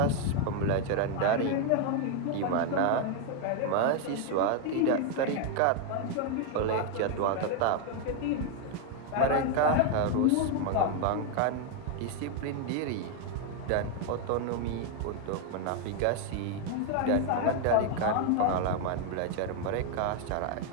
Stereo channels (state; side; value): different; both; correlation 0.01